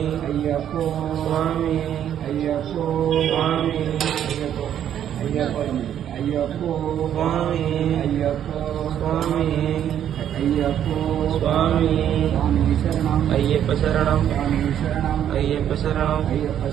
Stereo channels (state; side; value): quieter; left; 10.1 dB